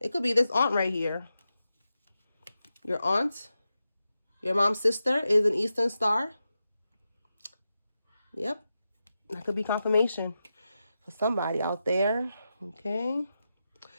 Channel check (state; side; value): inverted; both; correlation -0.90